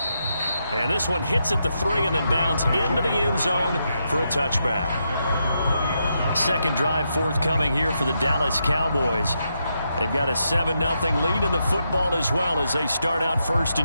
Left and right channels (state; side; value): inverted; both; correlation -0.83